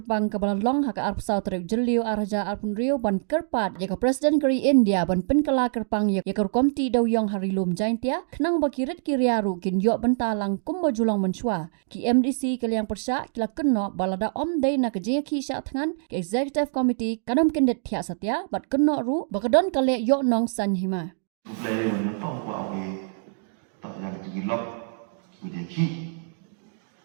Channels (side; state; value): left; silent; digital silence